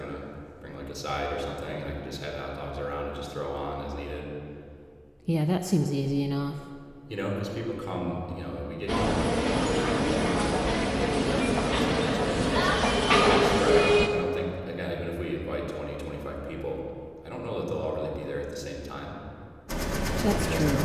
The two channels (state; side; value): identical; both; correlation 1.00